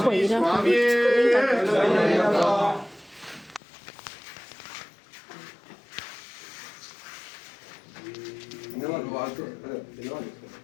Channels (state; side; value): drops out; right; at 3.6 s